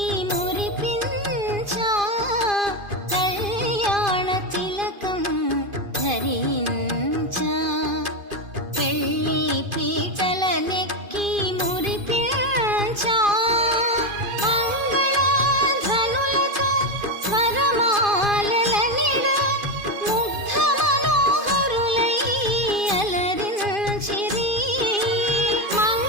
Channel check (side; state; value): left; late; 2.5 ms